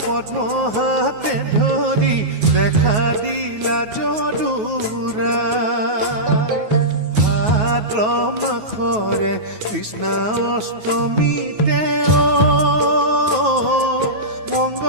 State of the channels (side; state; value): left; late; 9.4 ms